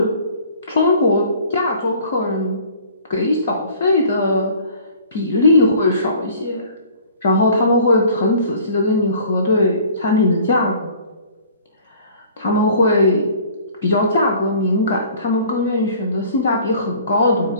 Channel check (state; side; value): inverted; both; correlation -0.50